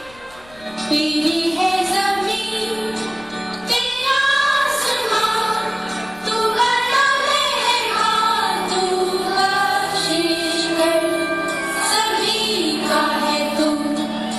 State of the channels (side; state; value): left; noise; rumble, 25 dB below the sound